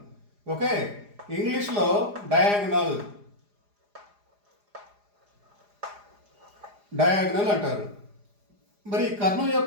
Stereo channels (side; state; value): left; late; 4.9 ms